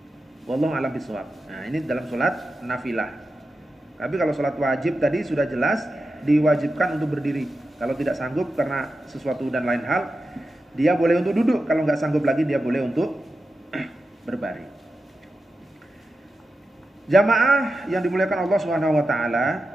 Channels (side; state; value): both; normal; correlation 0.91